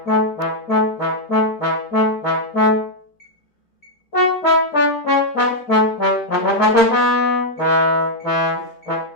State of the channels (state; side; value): late; right; 2.4 ms